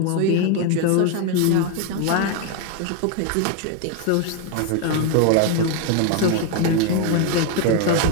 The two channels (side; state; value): both; different; correlation 0.01